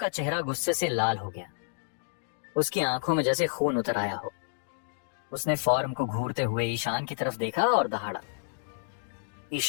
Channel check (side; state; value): right; silent; digital silence